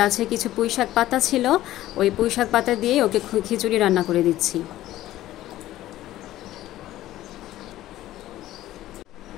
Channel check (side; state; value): right; quieter; 14.6 dB